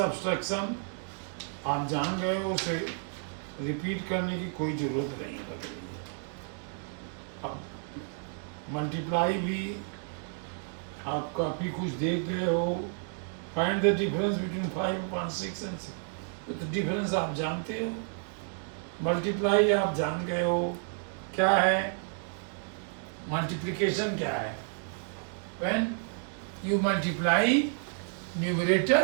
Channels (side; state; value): left; silent; 57 dB below the other